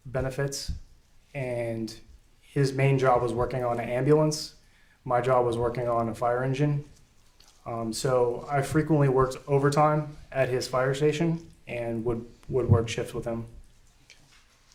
benefits, and his main job was working on an ambulance. My job was working on a fire engine. So I frequently worked overtime at his fire station and would work shifts with him.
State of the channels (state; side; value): identical; both; correlation 1.00